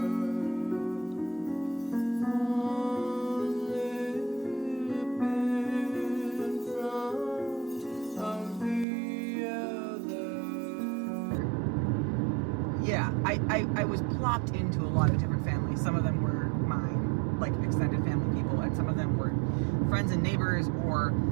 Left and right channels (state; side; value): drops out; left; at 8.8 s